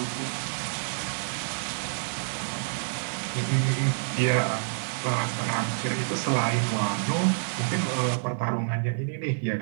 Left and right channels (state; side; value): silent; left; digital silence